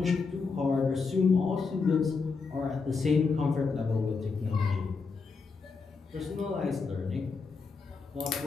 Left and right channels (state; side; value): quieter; right; 4.7 dB